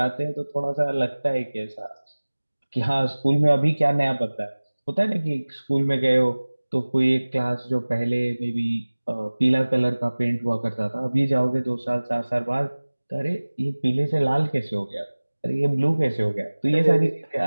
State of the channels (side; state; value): both; inverted; correlation -1.00